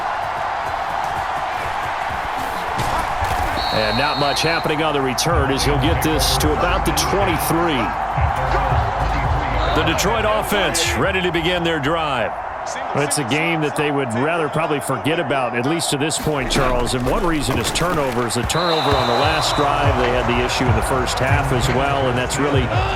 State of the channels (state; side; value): identical; both; correlation 1.00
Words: And not much happening on the return as he'll get this to about the 23. The Detroit offense ready to begin their drive. It's a game that they would rather probably forget about, at least to this point, Charles. And one reason is turnovers. A turnover on the last drive. They had the issue in the first half as well, and that's really,